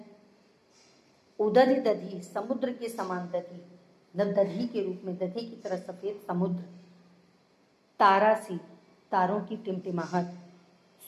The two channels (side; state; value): both; identical; correlation 1.00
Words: उदधि दधि समुद्र के समान दधि, दधि के रूप में दधि की तरह सफेद समुद्र, तारासी तारों की टिमटिमाहट,